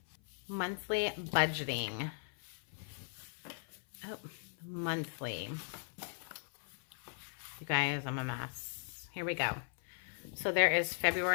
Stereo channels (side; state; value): right; silent; 52 dB below the other